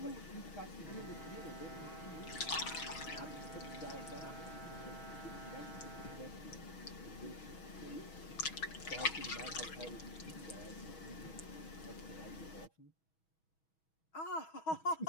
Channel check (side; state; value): right; late; 6.3 ms